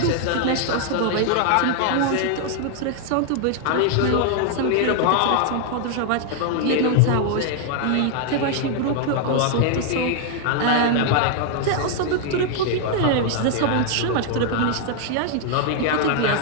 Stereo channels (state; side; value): different; both; correlation 0.00